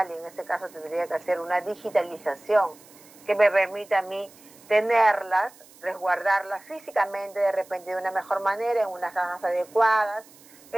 y en este caso tendría que hacer una digitalización que me permita a mí tenerlas, resguardarlas físicamente de repente de una mejor manera, en unas cajas adecuadas,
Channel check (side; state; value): right; noise; hiss, 24 dB below the sound